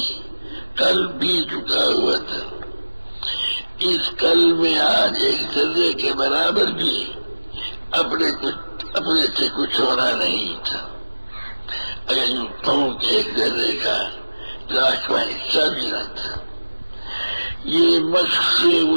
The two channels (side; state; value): both; inverted; correlation -1.00